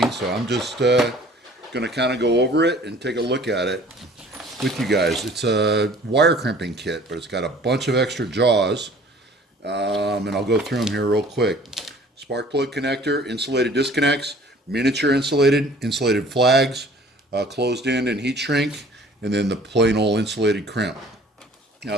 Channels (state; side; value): normal; both; correlation 0.51